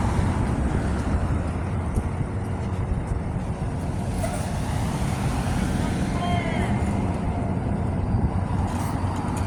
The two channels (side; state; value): both; identical; correlation 1.00